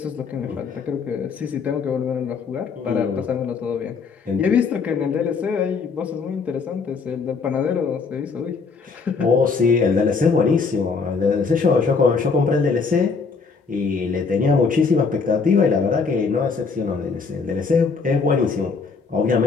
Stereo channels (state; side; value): quieter; right; 4.9 dB